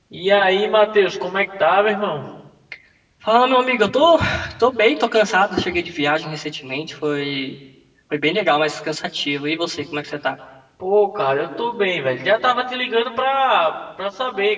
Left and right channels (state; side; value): identical; both; correlation 1.00